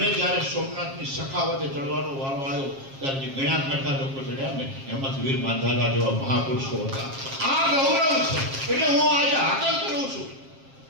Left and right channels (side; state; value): left; late; 7.4 ms